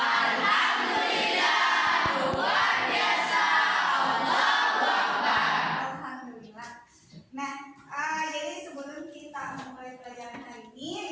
luar biasa. Allahu Akbar. Alhamdulillah. Nah, jadi sebelum kita memulai pelajaran hari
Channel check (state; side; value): identical; both; correlation 1.00